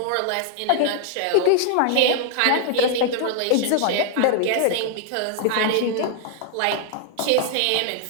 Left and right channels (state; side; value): different; both; correlation 0.00